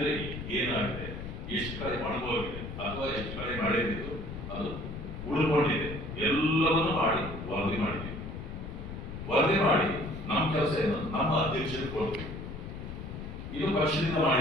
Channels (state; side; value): noise; left; rumble, 8 dB below the sound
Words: ಏನಾಗಿದೆ, ಎಷ್ಟು ಕಡೆ ಒಣಗೋಗಿದೆ ಅಥವಾ ಎಷ್ಟು ಕಡೆ ಮಳೆ ಬಿದ್ದು ಅದು ಉಳ್ಕೊಂಡಿದೆ, ಎಲ್ಲವನ್ನೂ ಮಾಡಿ ವರದಿ ಮಾಡಿದ್ದೀವಿ. ವರದಿ ಮಾಡಿ ನಮ್ಮ ಕೆಲಸ ಏನು, ನಮ್ಮ ಅಧ್ಯಕ್ಷರಿಗೆ ಕೊಡ್ತೀವಿ. ಇದು ಪಕ್ಷದಿಂದ